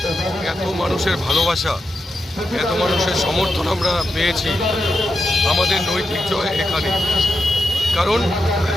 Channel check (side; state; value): both; normal; correlation 0.87